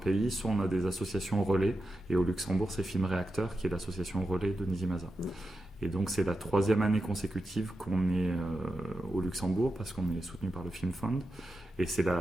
soit on a des associations relais, et au Luxembourg c'est Film Réacteur qui est l'association relais de Nizimasa. Et donc c'est la 3e année consécutive qu'on est au Luxembourg parce qu'on est soutenu par le Film Fund, et c'est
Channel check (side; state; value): both; normal; correlation 0.90